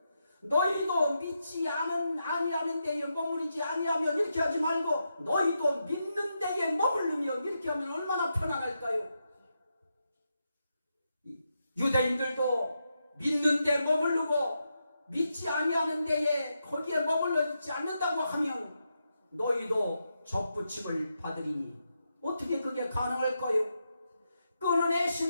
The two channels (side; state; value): both; inverted; correlation -0.85